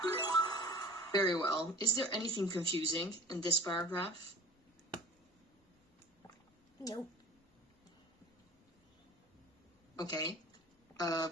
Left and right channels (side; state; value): both; normal; correlation 0.41